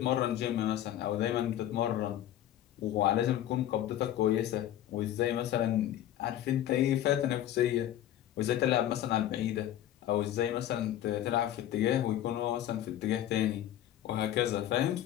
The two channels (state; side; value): quieter; right; 12.1 dB